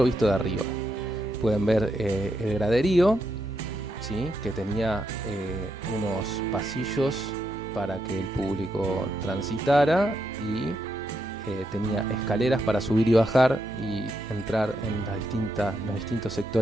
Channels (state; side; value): normal; both; correlation 0.81